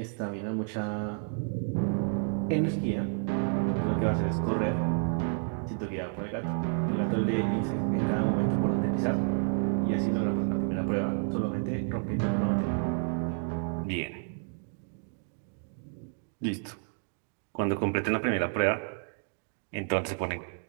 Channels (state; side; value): silent; left; 56 dB below the other